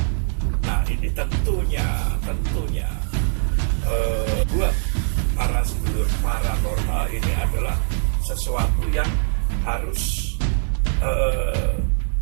Nah ini tentunya buat para sedulur paranormal ini adalah sesuatu yang harus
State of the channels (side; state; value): left; silent; digital silence